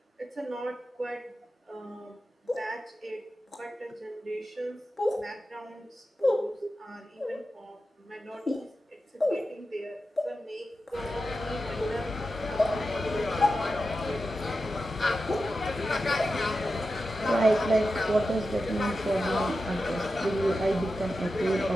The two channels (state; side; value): normal; both; correlation 0.91